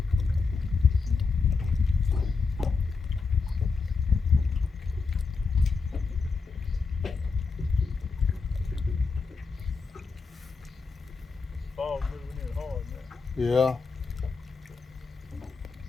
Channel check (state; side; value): quieter; right; 4.6 dB